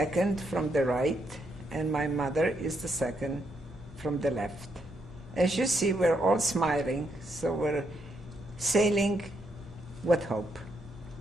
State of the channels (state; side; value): normal; both; correlation 0.77